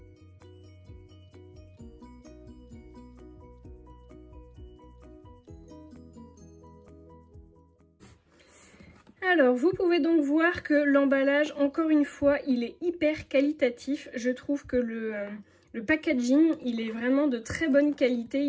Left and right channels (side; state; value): both; identical; correlation 1.00